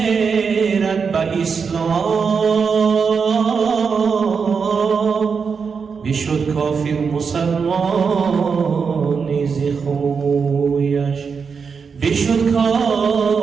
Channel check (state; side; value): quieter; left; 5.7 dB